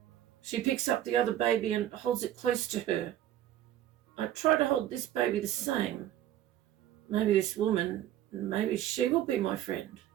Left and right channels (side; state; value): left; quieter; 12.2 dB